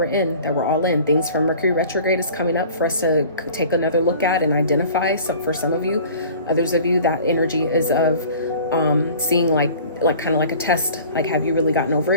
in, that we're all in. Things from Mercury retrograde is coming up for us to take another look at and identify. Some, for some of you, others of you, that energy is of seeing like kind of like a test, like, have you really gotten over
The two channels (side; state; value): both; inverted; correlation -0.45